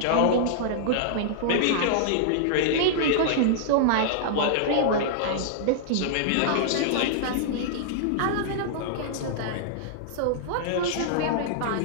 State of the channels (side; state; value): both; different; correlation -0.02